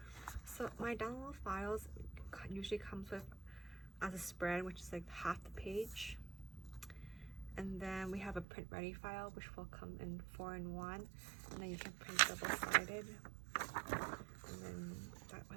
So my download files usually comes with as a spread, which is like half the page, and then we have a print ready file which will come in 4-in-1, and then you can print double-sided, and then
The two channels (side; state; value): left; drops out; at 8.5 s